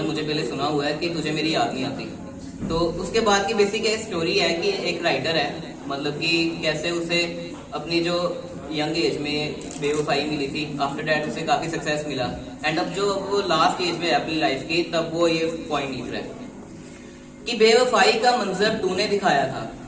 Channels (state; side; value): identical; both; correlation 1.00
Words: मुझे पहले सुना हुआ है, कि तुझे मेरी याद नहीं आती। तो उसके बाद की बेसिक स्टोरी है कि एक राइटर है, मतलब कि कैसे उसे अपनी जो यंग एज में बेवफाई मिली थी, आफ्टर डैट उसे काफी सक्सेस मिला। एंड अब जो वो लास्ट एज में अपनी लाइफ की, तब वो ये पॉइंट लिख रहा है कि बेवफाई का मंजर तूने दिखाया था